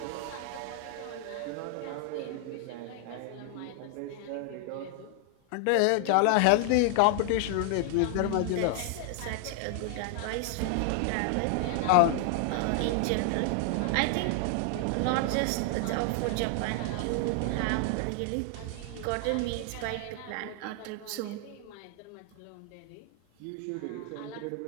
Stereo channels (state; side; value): different; both; correlation 0.00